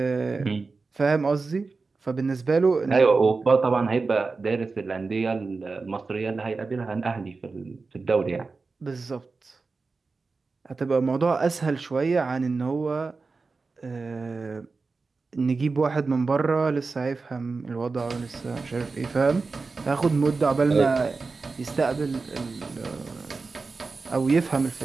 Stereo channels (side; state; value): left; quieter; 4.1 dB